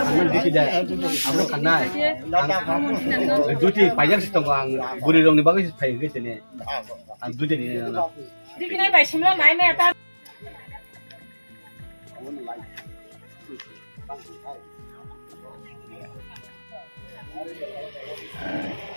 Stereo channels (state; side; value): inverted; both; correlation -1.00